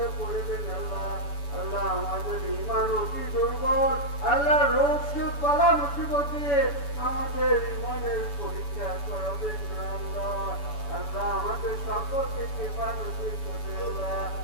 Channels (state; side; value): late; right; 7.0 ms